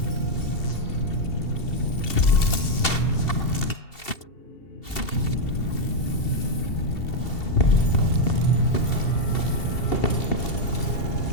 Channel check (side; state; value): right; late; 2.7 ms